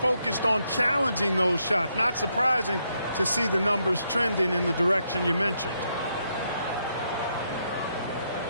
on challenging those shots. Not surprising to see the numbers trending in the direction you mentioned.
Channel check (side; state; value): both; inverted; correlation -0.78